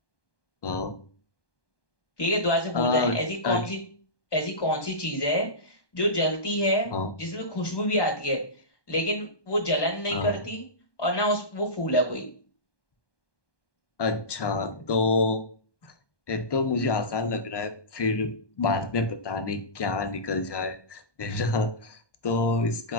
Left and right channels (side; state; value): right; late; 1.2 ms